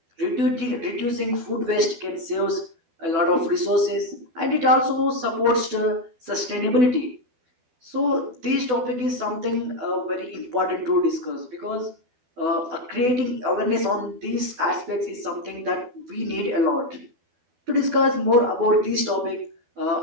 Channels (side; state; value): left; late; 12 ms